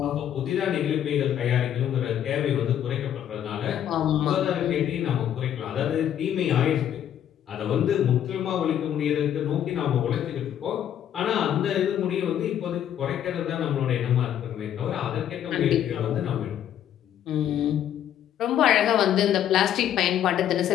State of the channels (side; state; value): right; quieter; 10.3 dB